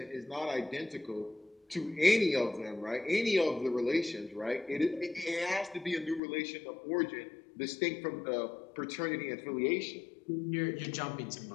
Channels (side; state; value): right; drops out; at 6.2 s